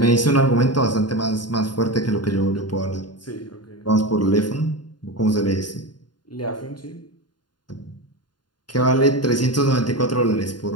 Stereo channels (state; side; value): late; right; 0.71 ms